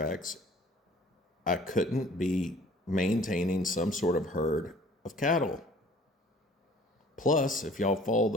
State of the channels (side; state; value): both; normal; correlation 0.52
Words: I couldn't be maintaining some sort of herd of cattle. Plus, if y'all follow